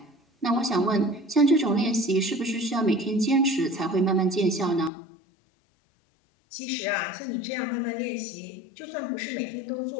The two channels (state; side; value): drops out; right; at 4.9 s